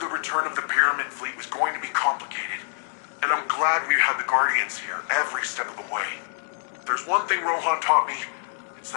return of the Pyramid Fleet was going to be complicated, and I'm glad we had the Guardians here every step of the way. There's one thing Rohan taught me, it's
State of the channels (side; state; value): right; silent; digital silence